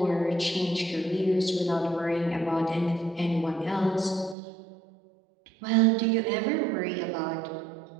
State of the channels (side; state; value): left; drops out; at 4.4 s